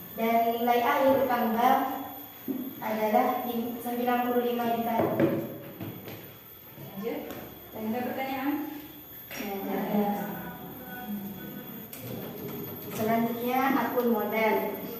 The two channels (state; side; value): identical; both; correlation 1.00